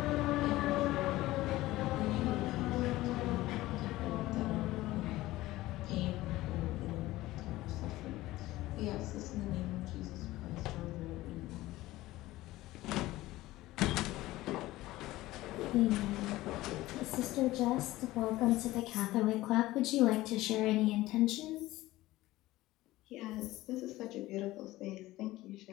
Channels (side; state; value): right; quieter; 17.4 dB